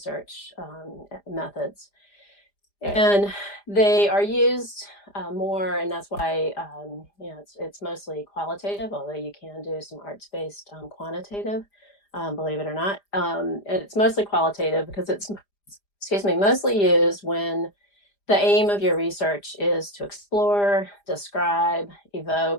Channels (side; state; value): right; late; 5.0 ms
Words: methods. And they are used more, and that's why it's mostly qualitative, although you can do some arts-based quantitative, believe it or not. And it's mostly qualitative because it's, mostly used when the aim of your research is to explore, describe,